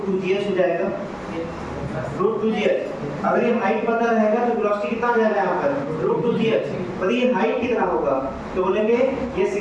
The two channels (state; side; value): identical; both; correlation 1.00